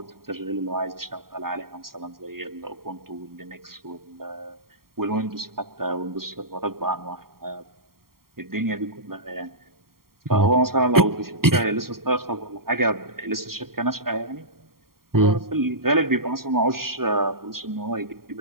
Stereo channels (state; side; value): late; left; 0.93 ms